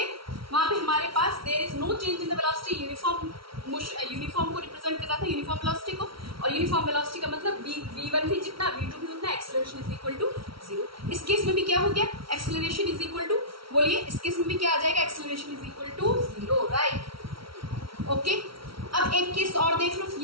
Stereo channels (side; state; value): left; late; 0.75 ms